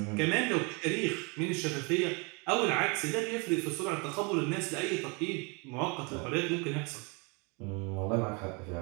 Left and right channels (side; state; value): left; quieter; 31.0 dB